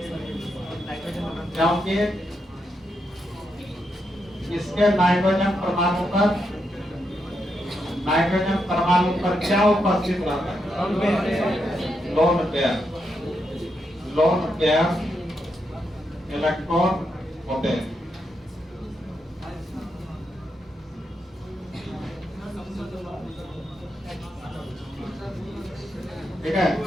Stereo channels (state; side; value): normal; both; correlation 0.82